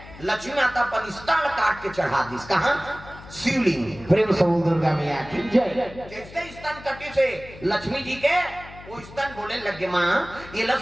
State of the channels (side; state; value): left; noise; hum, 17 dB below the sound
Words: लक्ष्मी माता अपन स्तन काट के चढ़ा दी। कहां? शिवलिंग। प्रेम से बोल दुर्गा मैया की जय। जैसे स्तन कटे से लक्ष्मी जी के वो स्तन बोले लगे माँ ये